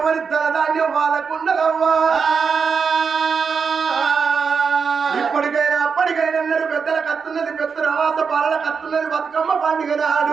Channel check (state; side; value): quieter; left; 5.8 dB